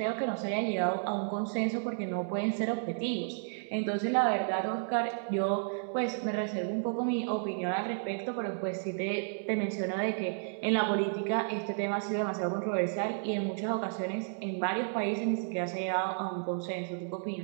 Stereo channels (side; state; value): left; silent; digital silence